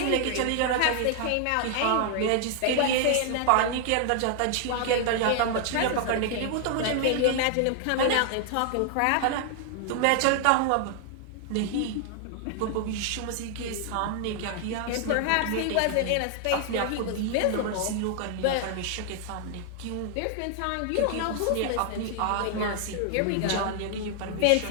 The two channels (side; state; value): both; different; correlation 0.00